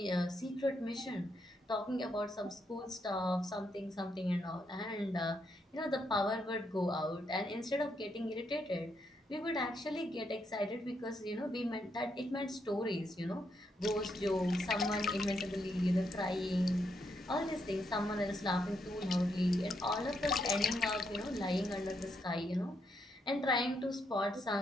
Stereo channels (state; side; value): normal; both; correlation 0.78